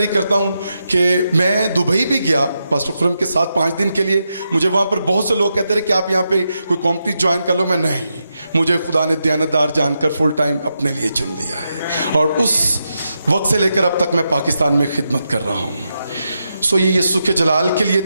करता हूँ कि मैं दुबई भी गया पास्टर खुरम के साथ 5 दिन के लिए। मुझे वहाँ पर बहुत से लोग कहते रहे कि आप यहाँ पे कोई कंपनी ज्वाइन कर लो। मैं नहीं, मुझे खुदा ने दयानतदार जानकर फुल टाइम अपने लिए चुन लिया है और उस वक्त से लेकर अब तक मैं पाकिस्तान में खिदमत कर रहा हूँ। सो ये यीशु के जलाल के लिए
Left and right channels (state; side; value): inverted; both; correlation -0.85